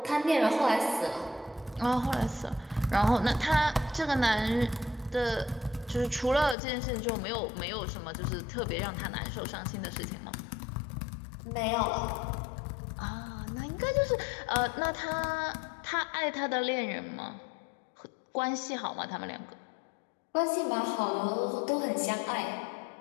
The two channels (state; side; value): drops out; right; at 6.6 s